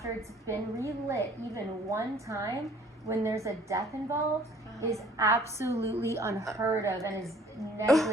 it's been relit even one time when there's a death involved is absolutely unheard of and is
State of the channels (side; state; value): both; normal; correlation 0.55